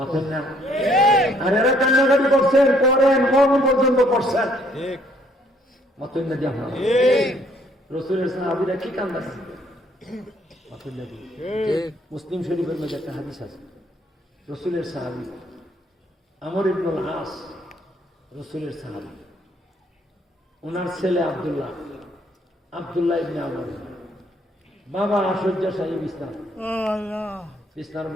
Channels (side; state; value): both; normal; correlation 0.65